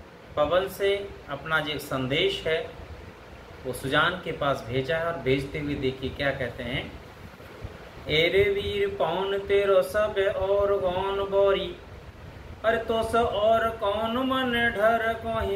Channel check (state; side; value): identical; both; correlation 1.00